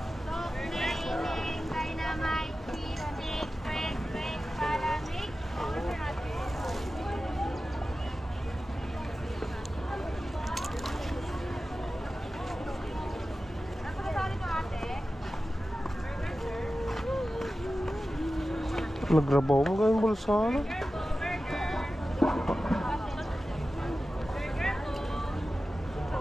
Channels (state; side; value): normal; both; correlation 0.94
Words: Nagrabaw mo gawing bulsa ano?